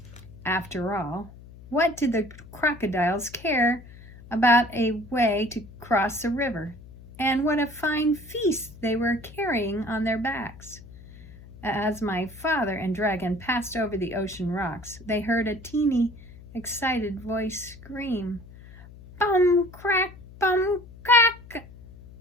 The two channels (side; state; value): left; noise; hum, 19 dB below the sound